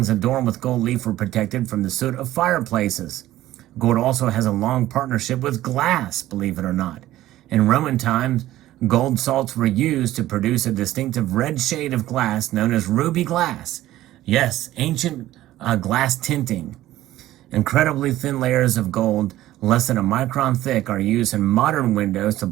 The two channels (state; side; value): quieter; left; 14.8 dB